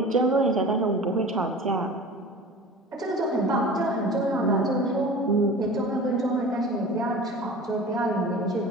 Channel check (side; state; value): both; normal; correlation 0.38